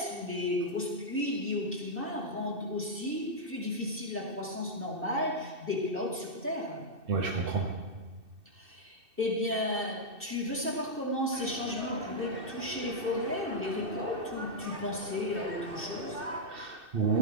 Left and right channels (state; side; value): late; left; 2.6 ms